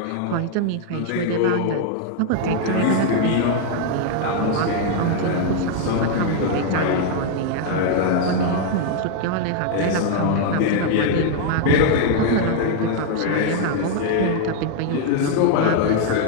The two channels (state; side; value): different; both; correlation 0.00